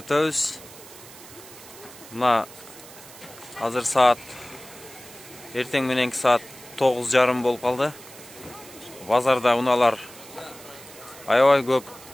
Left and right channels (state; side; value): noise; right; hiss, 18 dB below the sound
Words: Мына азыр саат эртең мененки саат 9:30 болуп калды. Базарда унаалар аябай көп.